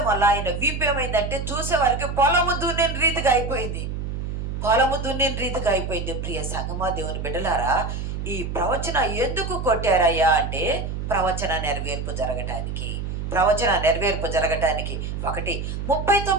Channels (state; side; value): noise; right; hum, 4 dB below the sound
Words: వల్ల ఆయన వీపు ఏమైందంటే చూసేవారికి పొలము దున్నిన రీతిగా అయిపోయింది. ప్రియ సంగమా, దేవుని బిడ్డలారా, ఈ ప్రవచన ఎందుకు కొట్టారయ్యా అంటే ప్రవచన నెరవేర్పు జరగటానికి.